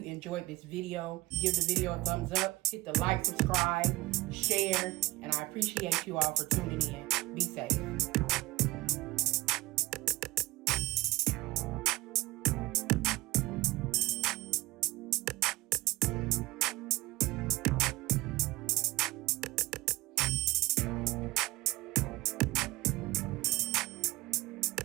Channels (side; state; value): left; quieter; 20.3 dB